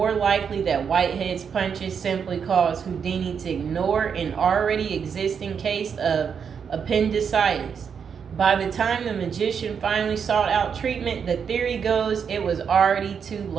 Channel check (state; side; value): quieter; left; 6.9 dB